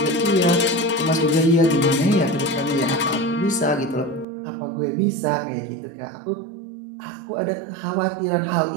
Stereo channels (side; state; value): left; drops out; at 4.2 s